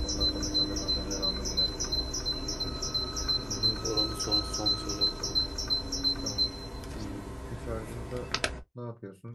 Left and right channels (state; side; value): identical; both; correlation 1.00